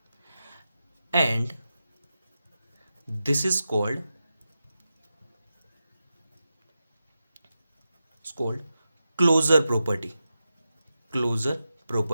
and this is called closure property.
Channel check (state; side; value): inverted; both; correlation -0.91